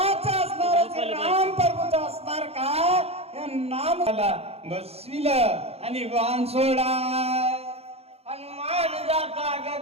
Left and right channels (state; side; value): late; left; 0.29 ms